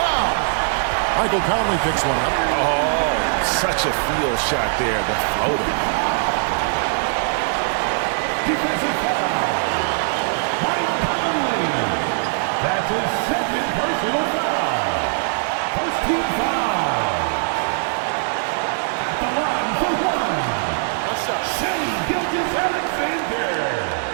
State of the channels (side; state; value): left; silent; digital silence